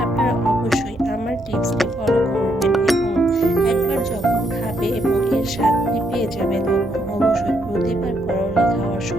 আপনারা অবশ্যই আমার টিপসটি ফলো করবেন এবং একবার যখন খাবে এবং এর স্বাদটি পেয়ে যাবে তখন অবশ্যই প্রতিবার করলা খাওয়ার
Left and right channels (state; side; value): normal; both; correlation 0.75